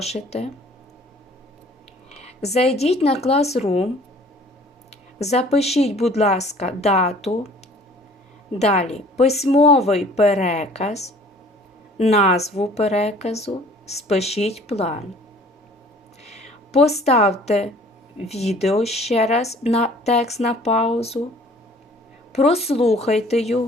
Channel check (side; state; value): both; normal; correlation 0.52